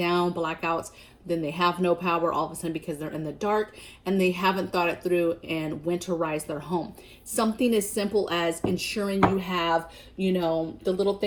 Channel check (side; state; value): both; identical; correlation 1.00